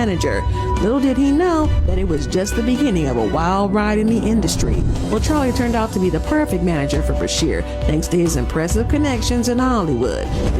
Little did he know that it was just the beginning of a wild ride in the industry. Well, Charlie turned out to be the perfect manager for Bashir, thanks to his impressive connections in Hollywood.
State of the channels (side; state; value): both; identical; correlation 1.00